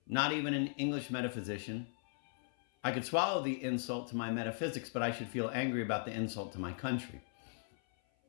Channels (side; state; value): right; silent; 53 dB below the other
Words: not even an English metaphysician, I could swallow the insult to my metaphysics, but I should feel angry about the insult to my country.